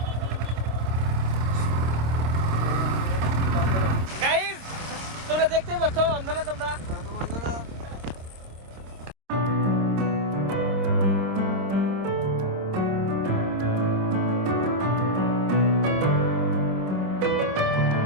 গাইস, তোমরা দেখতেই পাচ্ছ অন্ধনা তোমরা।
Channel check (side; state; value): left; late; 26 ms